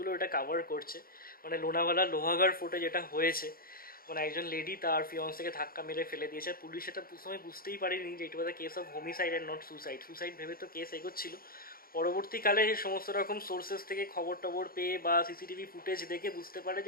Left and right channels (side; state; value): right; late; 0.43 ms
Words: এটা কাভার করছে। মানে লোনাভালা লোহাগাড় ফোর্টে যেটা হয়েছে, মানে একজন লেডি তার ফিয়ন্সকে ধাক্কা মেরে ফেলে দিয়েছে। পুলিশ এটা সময় বুঝতেই পারেনি যে it was a case of homicide and not suicide. Suicide ভেবে তো কেস এগোচ্ছিল। পরবর্তীকালে সমস্ত রকম সোর্সেস থেকে খবর টবর পেয়ে বা সিসিটিভি ফুটেজ দেখে বুঝতে পারে